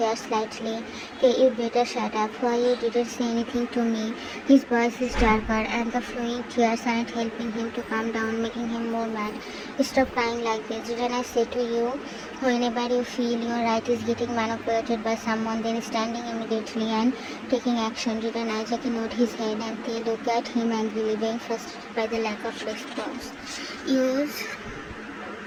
slightly. You better shut up. Why you didn't say anything to me? His voice is darker and the flowing tears aren't helping him to calm down, making him more mad. Stop crying like this. Didn't I say to you, whenever you feel your right is getting manipulated by someone, then standing immediately and taking action? Didn't I? JK nodded his head and they look at him angrily, being frustrated by the lack of response. Use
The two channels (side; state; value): both; identical; correlation 1.00